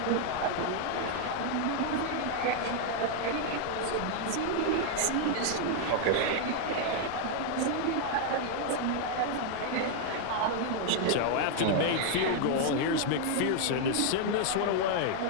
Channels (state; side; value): different; both; correlation 0.00